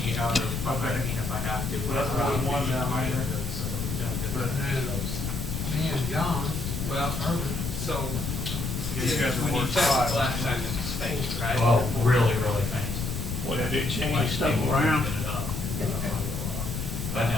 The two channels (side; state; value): left; noise; rumble, 4 dB below the sound